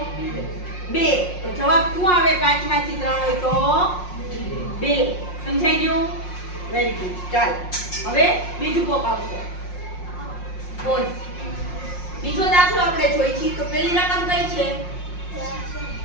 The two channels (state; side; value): late; right; 5.6 ms